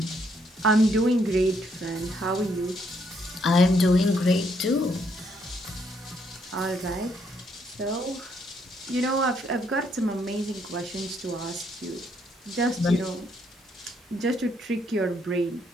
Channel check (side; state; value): both; normal; correlation 0.72